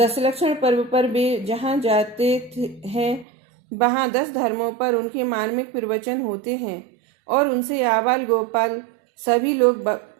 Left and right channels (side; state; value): left; drops out; at 3.2 s